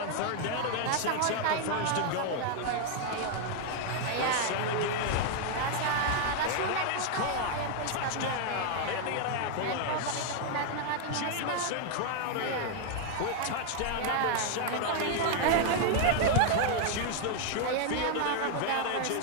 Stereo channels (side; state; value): both; different; correlation 0.00